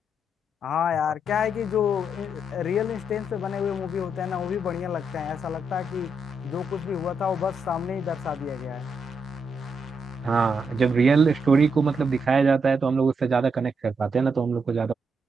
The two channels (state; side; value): normal; both; correlation 0.80